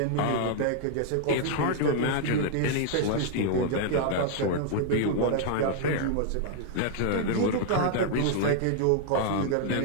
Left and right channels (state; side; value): different; both; correlation 0.00